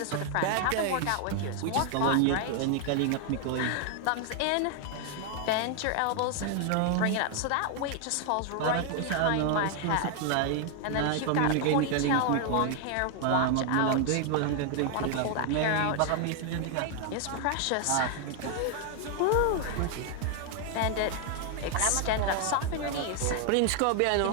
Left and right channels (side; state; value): both; different; correlation 0.00